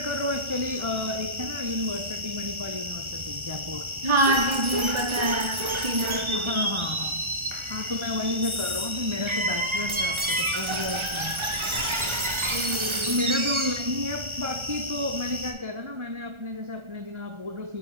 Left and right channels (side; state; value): left; late; 1.4 ms